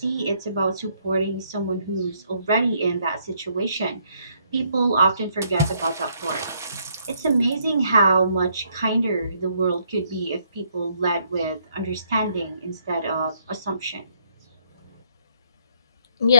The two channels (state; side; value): inverted; both; correlation -0.70